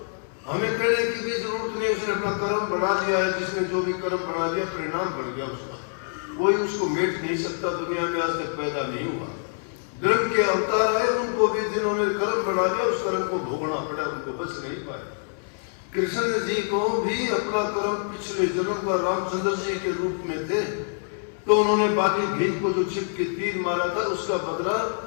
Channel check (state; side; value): silent; right; 57 dB below the other